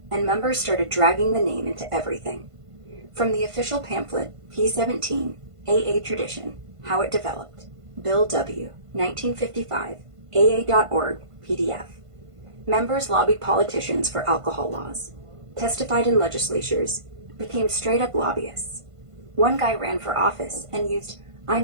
and members started dragging the name into everything. From the official pamphlet, P17, AA Tradition, How It Developed, Bill W., 1955, AA.org, PDF. Members lobbied politicians for alcohol laws, testified in legislatures, became straight-up lobbyists. One guy ran for office and used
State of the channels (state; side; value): late; left; 1.5 ms